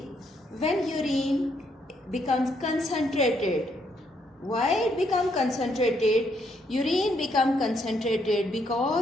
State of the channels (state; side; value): normal; both; correlation 0.73